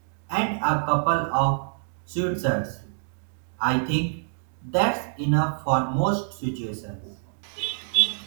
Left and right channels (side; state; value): left; silent; digital silence